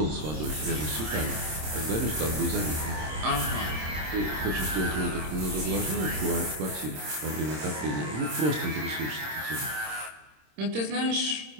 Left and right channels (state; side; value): late; left; 26 ms